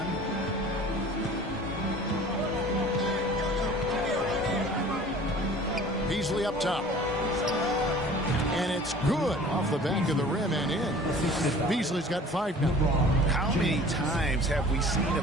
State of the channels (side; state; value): both; normal; correlation 0.46